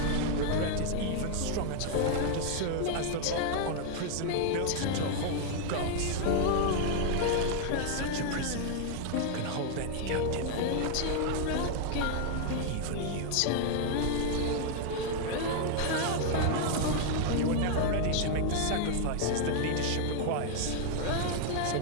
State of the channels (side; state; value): both; different; correlation 0.00